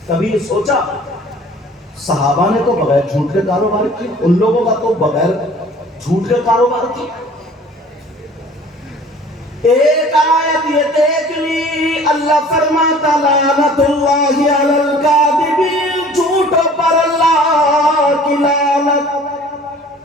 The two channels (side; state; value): both; normal; correlation 0.49